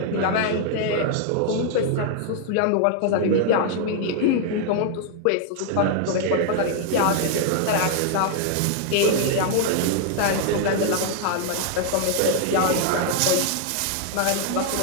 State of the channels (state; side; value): different; both; correlation 0.00